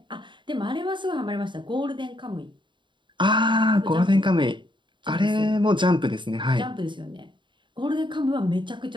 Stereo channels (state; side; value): late; left; 0.23 ms